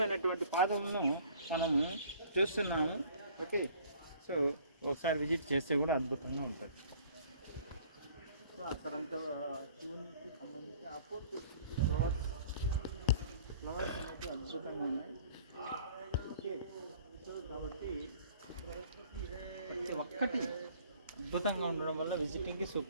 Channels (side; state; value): both; inverted; correlation -0.53